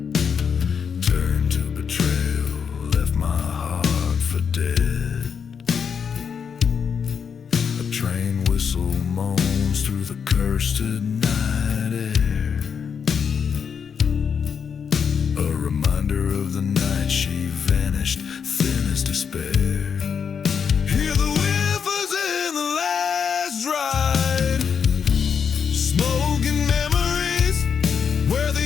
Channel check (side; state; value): right; quieter; 6.8 dB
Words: Turned to betrayal, left my heart for dead. A train whistle moans through the cursed night air, a reminder of the night she vanished, thin as despair. Hear the whiffers in the last ride, smoke and memories where